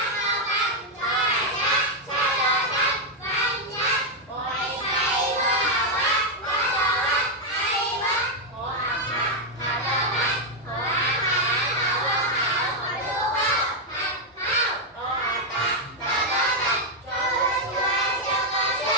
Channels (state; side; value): normal; both; correlation 0.00